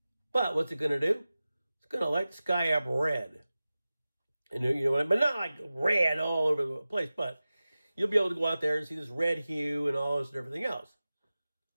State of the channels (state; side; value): inverted; both; correlation -0.96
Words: But what's it going to do? It's going to light the sky up red. And you know what I mean? But not like red all over the place, but you'll be able to go out there and see this red hue and all this and everything else.